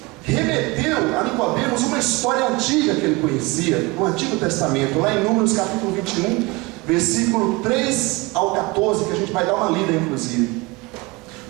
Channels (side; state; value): left; quieter; 24.5 dB